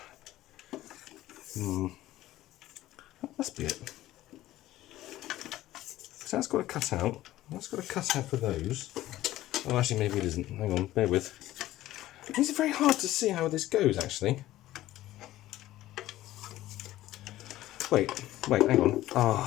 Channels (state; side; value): quieter; right; 15.2 dB